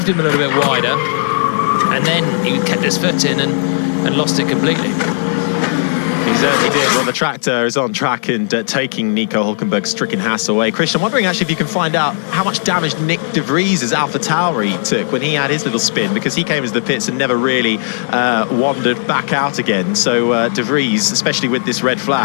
him a little bit wider, and then he kept his foot in and lost it completely. He certainly did. Well, the tractor is on track and taking Nico Hulkenberg's stricken Haas away. Christian, I'm wondering actually if you can find out how much damage Nick de Vries' AlphaTauri took when he had his little spin, because he came into the pits and never really wandered back out again. So de Vries, especially with this red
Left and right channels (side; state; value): right; silent; digital silence